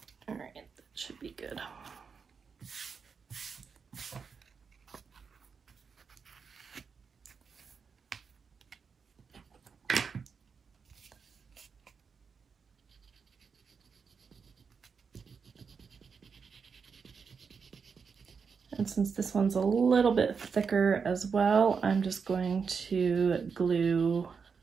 Should be good. And since this one's a little bit thicker as well, I'm just going to glue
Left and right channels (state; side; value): quieter; left; 5.8 dB